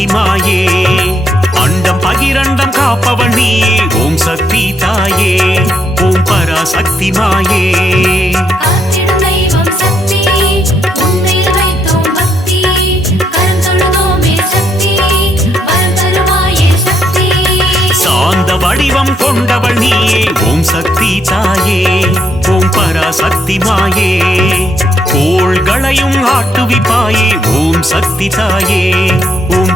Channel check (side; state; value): both; normal; correlation 0.75